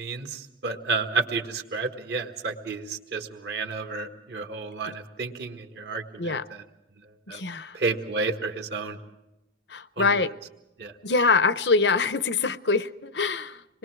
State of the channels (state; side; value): normal; both; correlation 0.02